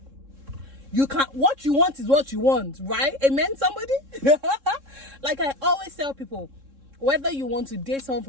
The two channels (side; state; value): left; late; 3.7 ms